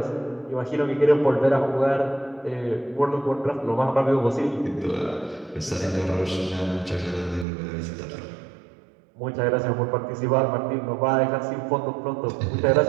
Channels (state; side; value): drops out; left; at 7.5 s